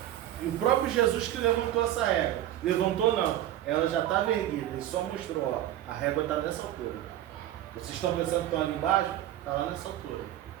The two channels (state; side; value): quieter; left; 12.7 dB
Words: E o próprio Jesus que levantou essa régua. Levantou não, ela já estava erguida. Ele só mostrou, a régua está nessa altura. Vocês estão pensando que estão ali embaixo? Está lá nessa altura.